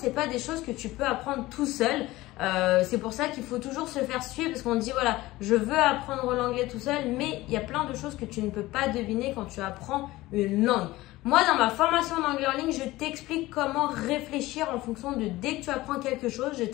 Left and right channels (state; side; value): quieter; right; 18.3 dB